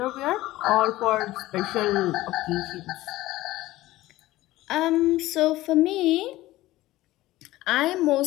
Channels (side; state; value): right; quieter; 17.0 dB